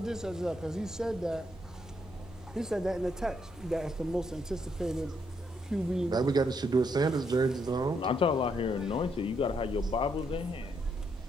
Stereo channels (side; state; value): both; normal; correlation 0.76